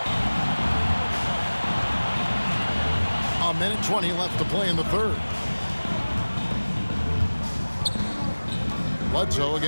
A minute 20 left to play in the third. Bledsoe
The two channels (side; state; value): both; inverted; correlation -1.00